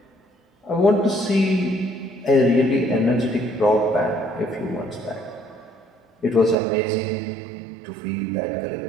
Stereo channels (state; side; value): drops out; left; at 6.6 s